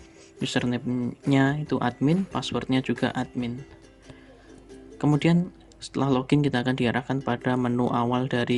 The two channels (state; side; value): identical; both; correlation 1.00